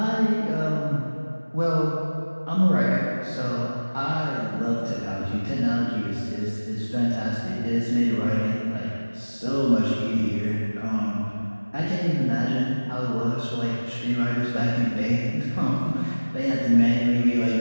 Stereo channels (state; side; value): inverted; both; correlation -1.00